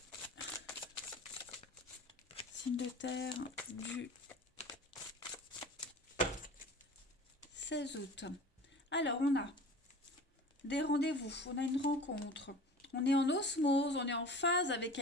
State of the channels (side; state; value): both; normal; correlation 0.39